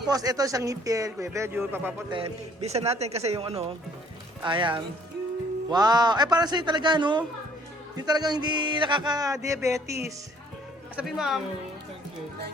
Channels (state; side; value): normal; both; correlation 0.60